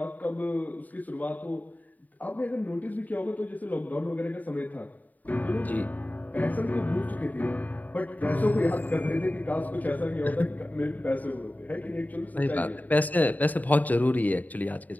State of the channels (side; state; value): right; late; 0.079 ms